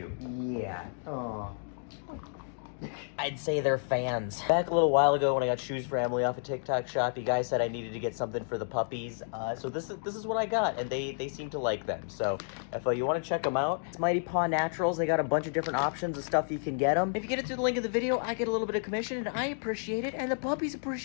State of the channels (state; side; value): silent; right; digital silence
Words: Yeah. Oh. I'd say they're fans. Back a little while ago when I got Shoes for Emily off a TikTok shop, you guys said I needed to get something for the puppies. So this is what I got, and they seem to like them. So if you want to check them out, it's Mighty Paw Naturals. They got a bunch of different options of stuff you can get them. If you get it through the link in the video, I get a little bit of commission, and I appreciate it, and the puppies